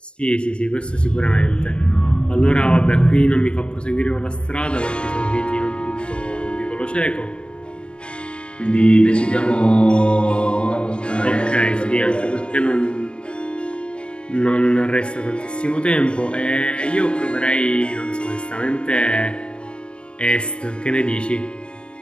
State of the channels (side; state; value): right; late; 0.054 ms